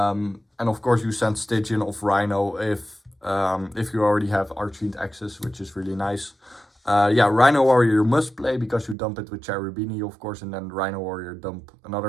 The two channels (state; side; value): drops out; left; at 9.0 s